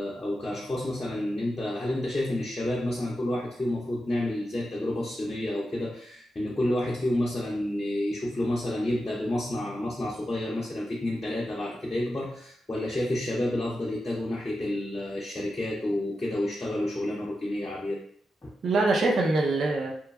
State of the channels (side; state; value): both; normal; correlation 0.89